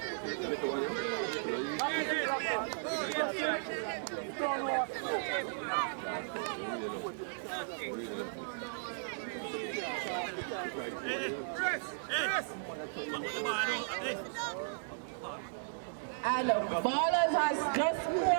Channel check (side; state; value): left; silent; digital silence